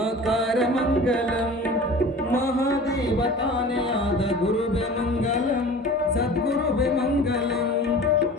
ಮಂಗಲಂ, ಮಹಾದೇವತಾನೇ ಆದ ಗುರುವೆ ಮಂಗಲಂ, ಸದ್ಗುರುವೆ ಮಂಗಲಂ.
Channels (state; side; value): normal; both; correlation 0.40